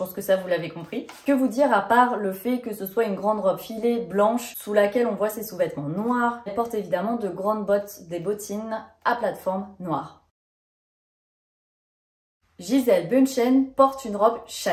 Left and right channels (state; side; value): identical; both; correlation 1.00